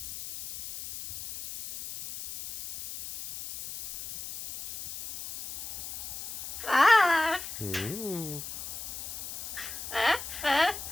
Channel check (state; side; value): noise; left; hiss, 9 dB below the sound